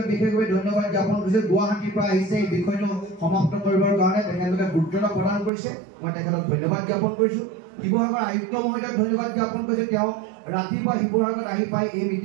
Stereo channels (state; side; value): drops out; left; at 5.5 s